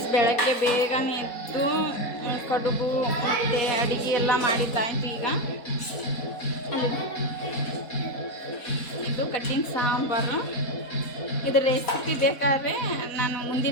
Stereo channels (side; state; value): right; late; 4.1 ms